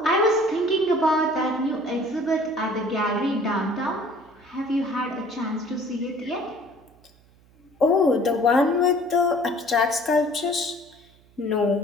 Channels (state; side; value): noise; right; hum, 29 dB below the sound